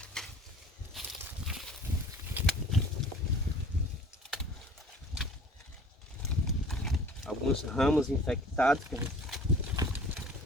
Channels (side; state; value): both; normal; correlation 0.49